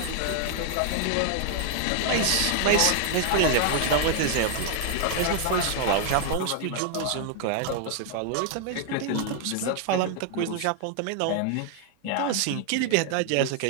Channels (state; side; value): different; both; correlation 0.00